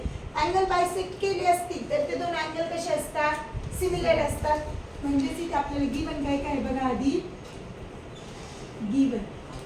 अँगल बायसेक्ट केले असतील तर ते दोन अँगल कसे असतात, सिमिलर असतात. म्हणजेच इथे आपल्याला गिवन काय काय बघा आधी. Given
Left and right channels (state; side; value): identical; both; correlation 1.00